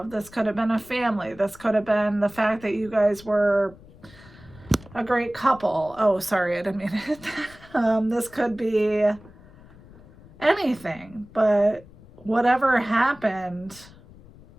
This could have been a family. This could have been the fact that you guys were a great couple. Oh, sorry, I didn't mean it. This could be anything, but whatever happened,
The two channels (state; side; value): noise; left; rumble, 22 dB below the sound